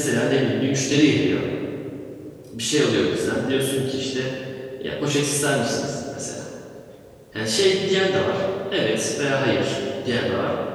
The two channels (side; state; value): both; identical; correlation 1.00